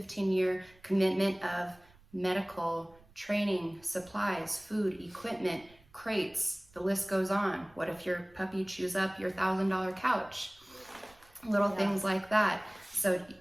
commitment of medical, training, supplies, food, equipment, crates, the list goes on. What if your puppy chews up your $1,000 couch? Little things like that. So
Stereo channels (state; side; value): noise; right; rumble, 28 dB below the sound